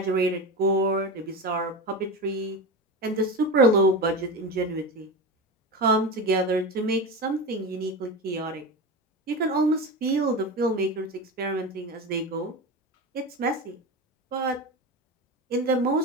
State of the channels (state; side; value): normal; both; correlation 0.23